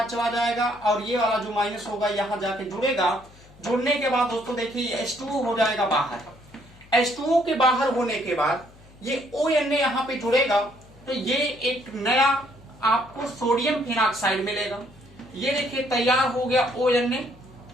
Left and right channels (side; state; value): left; noise; hum, 24 dB below the sound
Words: चला जाएगा, और ये वाला जो माइनस होगा यहाँ जाके जुड़ेगा। जुड़ने के बाद दोस्तों देखिए H2O हो जाएगा बाहर। H2O के बाहर होने के बाद ये ONA यहाँ पे जुड़ेगा, तो ये एक नया आपको सोडियम फिनॉक्साइड मिलेगा। ये देखिए तैयार हो गया ONA।